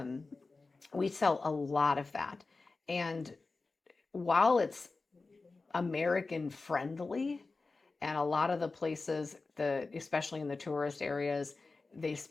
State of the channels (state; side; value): quieter; right; 3.8 dB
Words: we sell a lot of that. And while it's American friendly, and a lot of the places, especially in the tourist areas, they